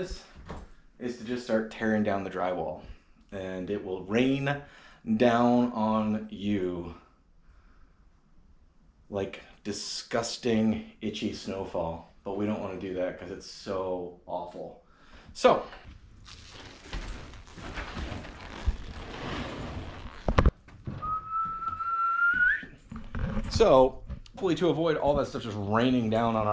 is to just start tearing down the drywall. And it will rain down on you like disgusting, itchy snowfall. But we don't want to do that because it's so awful. So, hopefully to avoid all that stuff just raining down on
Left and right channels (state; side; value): identical; both; correlation 1.00